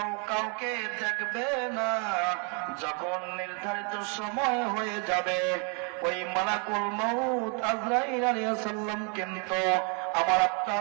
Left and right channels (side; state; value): left; quieter; 37.3 dB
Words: কাউকে দেখবে না। যখন নির্ধারিত সময় হয়ে যাবে, ওই মালাকুল মউত আজরাইল আলাইহিস সালাম কিন্তু আমার